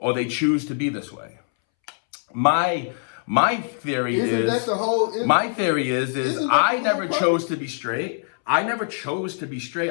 they choose to be this way? My theory is I never chose to be straight. I never chose to be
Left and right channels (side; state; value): right; silent; 63 dB below the other